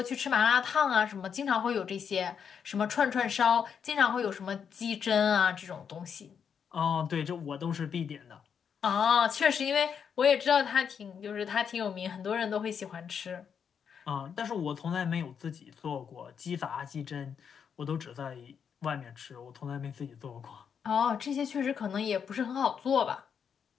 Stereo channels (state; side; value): quieter; right; 7.2 dB